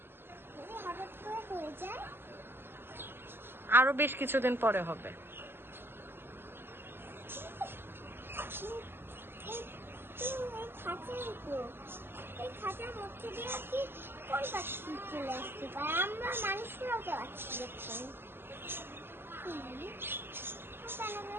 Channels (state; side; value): late; left; 0.11 ms